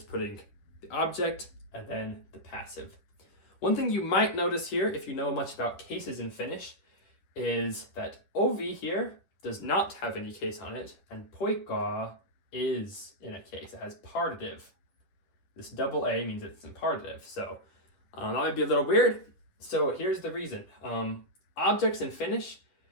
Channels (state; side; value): late; right; 10 ms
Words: putting the object and then the passive. One thing you might notice here, if you know much about cases in Finnish, is that ovi here does not have any case on it, and poika is in a case. It has partitive. This double A means it's in partitive. So that might be a little weird. So here's the reason. Objects in Finnish,